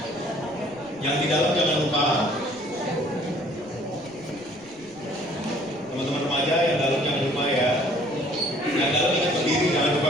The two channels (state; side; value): noise; right; rumble, 26 dB below the sound